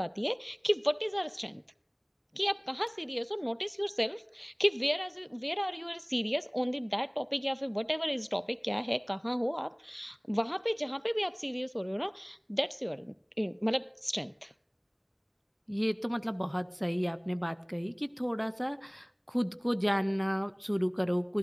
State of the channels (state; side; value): identical; both; correlation 1.00